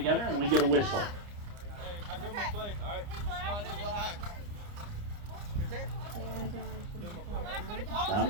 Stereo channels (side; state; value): left; late; 29 ms